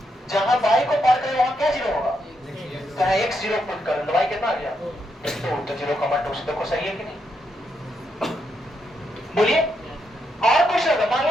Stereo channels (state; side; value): normal; both; correlation 0.80